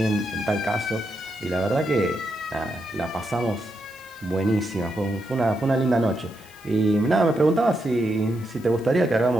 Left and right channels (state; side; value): normal; both; correlation 0.83